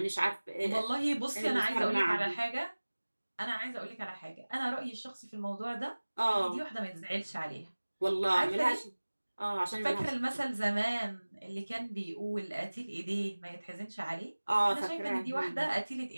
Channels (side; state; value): both; inverted; correlation -1.00